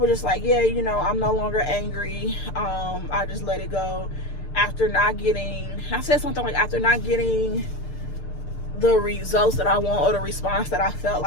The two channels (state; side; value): late; right; 6.7 ms